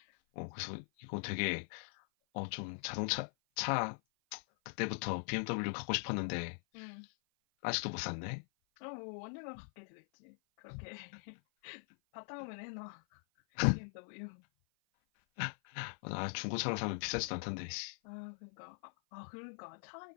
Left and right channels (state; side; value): silent; right; 50 dB below the other